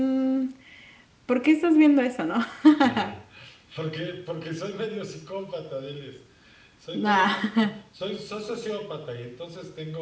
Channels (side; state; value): both; identical; correlation 1.00